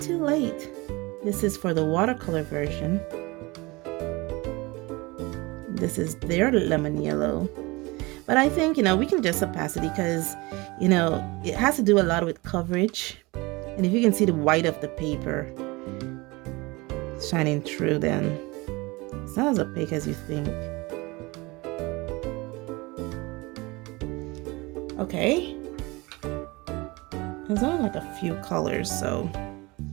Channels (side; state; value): left; quieter; 23.7 dB